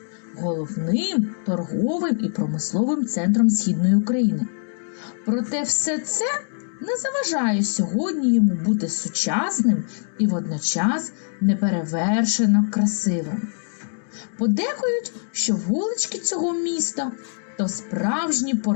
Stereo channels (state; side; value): silent; right; 63 dB below the other